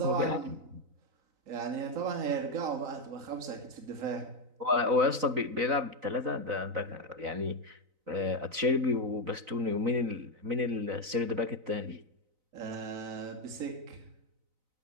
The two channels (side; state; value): left; late; 3.9 ms